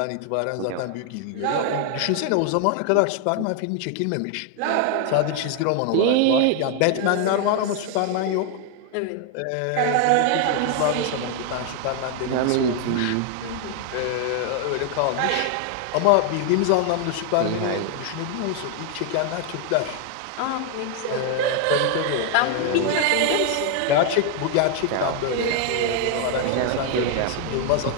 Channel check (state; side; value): different; both; correlation 0.00